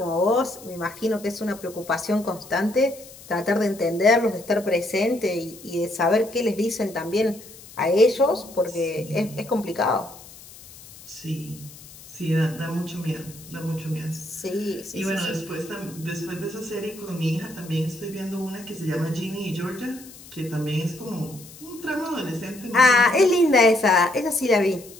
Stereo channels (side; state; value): left; noise; hiss, 19 dB below the sound